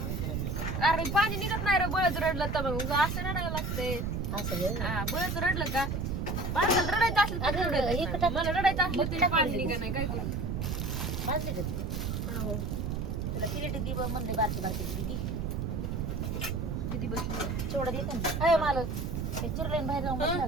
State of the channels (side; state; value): right; noise; rumble, 1 dB below the sound